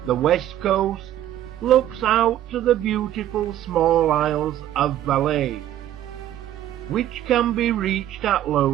The west coast looks out to the beautiful small isles of Valais, which can be reached at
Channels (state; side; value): quieter; left; 12.4 dB